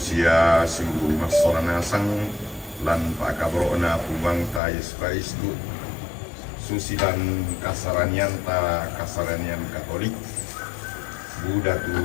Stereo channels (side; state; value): right; drops out; at 4.6 s